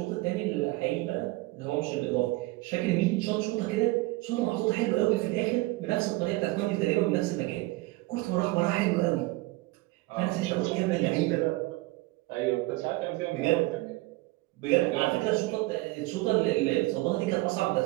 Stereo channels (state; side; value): quieter; left; 20.7 dB